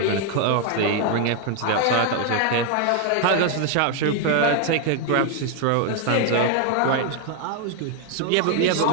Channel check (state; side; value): different; both; correlation 0.01